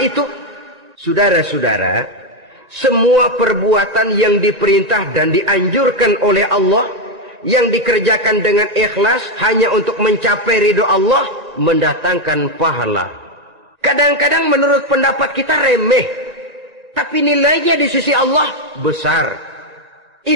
Saudara-saudara, semua perbuatan yang diperintah dan dianjurkan oleh Allah, yang dikerjakan dengan ikhlas hanya untuk mencapai ridho Allah, mendatangkan pahala. Kadang-kadang menurut pendapat kita remeh, tapi nilainya di sisi Allah besar.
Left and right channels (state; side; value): late; left; 1.8 ms